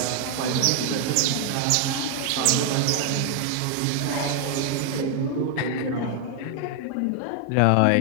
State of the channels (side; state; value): both; different; correlation 0.00